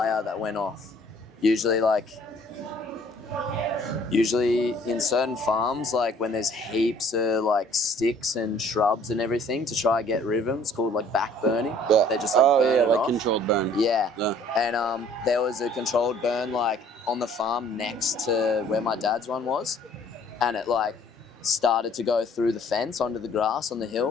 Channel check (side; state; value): both; normal; correlation 0.56